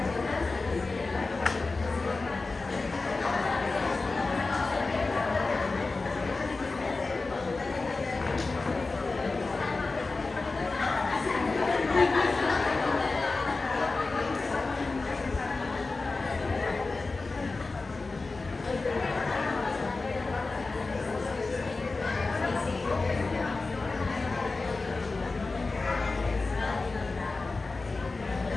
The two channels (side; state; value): right; quieter; 3.7 dB